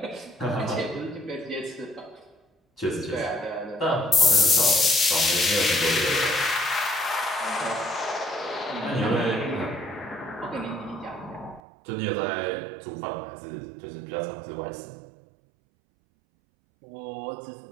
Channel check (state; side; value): drops out; left; at 11.6 s